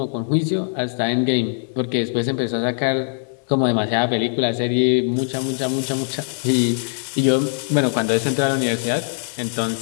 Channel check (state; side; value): silent; right; 63 dB below the other